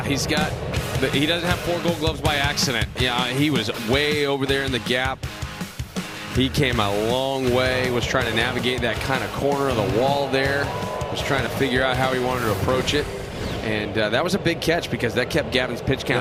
he doesn't have 4 Gold Gloves by accident. Yeah, he was way over there in the gap. He came a long way, was trying to navigate that kind of corner of the wall there, was trying to figure out how he wanted to approach it. And that was a big catch because that kept Gavin's pitch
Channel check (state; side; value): identical; both; correlation 1.00